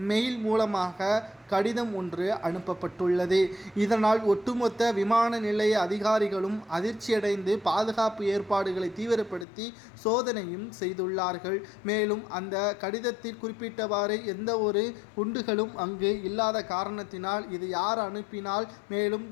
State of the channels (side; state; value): right; drops out; at 9.5 s